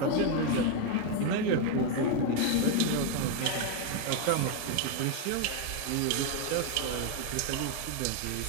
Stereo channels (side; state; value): both; different; correlation 0.01